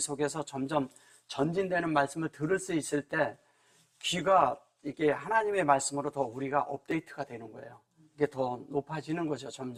속에서 점점 전진되는 말씀을 들을 수 있을 때 귀가 이게 하나님의 말씀으로 더 우리가 업데이트가 되는 거예요. 이게 더 높아지는 거죠,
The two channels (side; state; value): both; identical; correlation 1.00